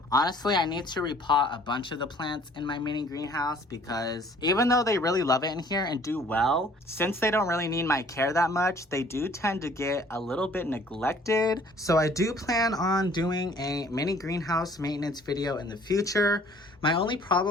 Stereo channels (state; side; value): normal; both; correlation 0.56